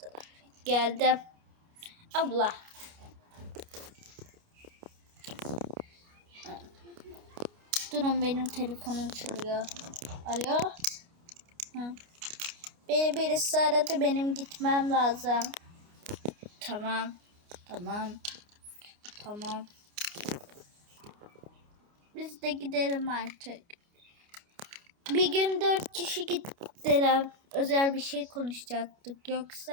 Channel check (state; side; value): late; left; 29 ms